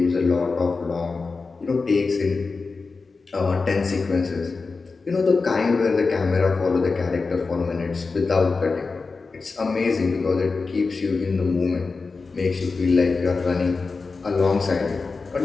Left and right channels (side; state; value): right; quieter; 4.2 dB